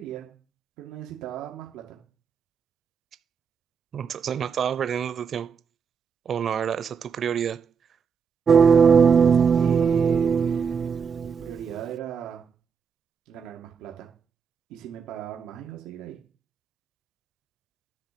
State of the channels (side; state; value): left; quieter; 6.3 dB